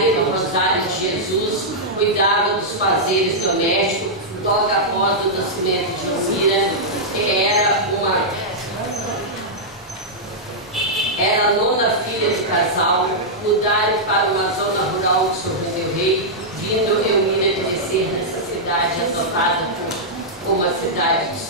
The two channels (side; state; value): both; normal; correlation -0.08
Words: do Rosário de Jesus, cuidava dos fazeres domésticos. Logo após o nascimento de Elmira, que era a nona filha do casal, mudaram para uma zona rural de São João del Rei, vindo Elmira crescer nessa cidade adotada como a cidade do